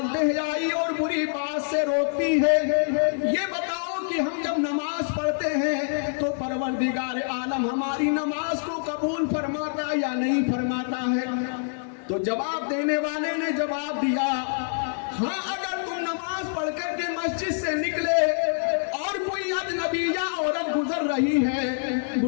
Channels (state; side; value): silent; right; digital silence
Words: بے حیائی اور بری بات سے روکتی ہے۔ یہ بتاؤ کہ ہم جب نماز پڑھتے ہیں تو پروردگار عالم ہماری نماز کو قبول فرماتا یا نہیں فرماتا ہے؟ تو جواب دینے والے نے جواب دیا، ہاں اگر تم نماز پڑھ کر کے مسجد سے نکلے اور کوئی اجنبیہ عورت گزر رہی ہے،